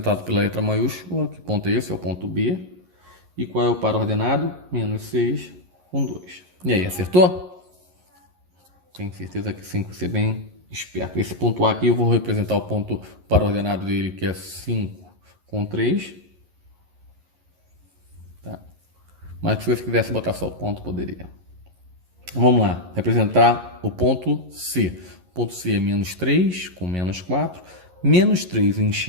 pela letra maiúscula. Que ponto é esse? É o ponto B. E qual é o par ordenado? Menos 6 com 2. E aí, acertou? Tenho certeza que sim, que você é bem esperto. Esse ponto A aqui eu vou representar o ponto par ordenado dele, que é 5 com 3. Mas se você quisesse botar só o ponto, poderia. Vamos lá. Representar o ponto C. O ponto C é menos 3 com menos 4. Menos 3 em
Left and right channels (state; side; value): late; left; 11 ms